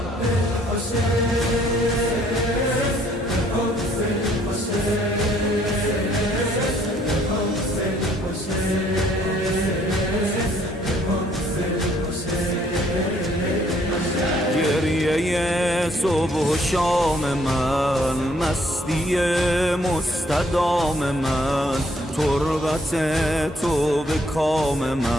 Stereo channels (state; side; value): normal; both; correlation 0.65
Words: گریه صبح و شام من، مستی مستدام من، تربت تو به کام